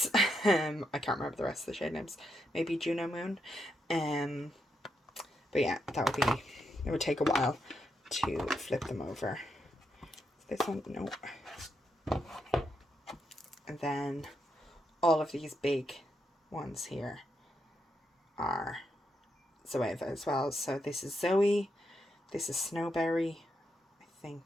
I can't remember the rest of the shade names. Maybe Juno Moon. But yeah, it would take a while to flip them over. This one, no. And then all of these big ones here are Zoeva as well. So this is Zoe, this is Snowberry, I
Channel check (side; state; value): both; normal; correlation 0.81